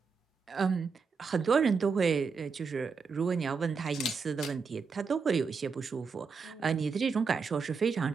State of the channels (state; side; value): quieter; left; 5.2 dB